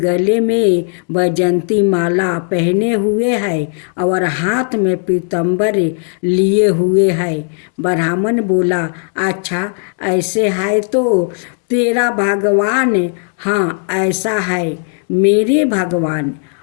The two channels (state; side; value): silent; right; digital silence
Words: में बैजंती माला पहने हुए है और हाथ में पीताम्बर लिए हुए है। ब्राह्मण बोला अच्छा ऐसे है तो तेरा भगवान, हाँ ऐसा है मेरे भगवान।